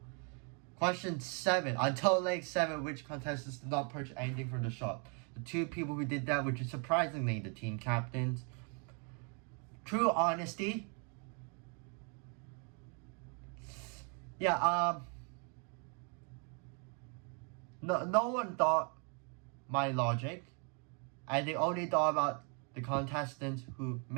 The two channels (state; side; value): quieter; left; 37.3 dB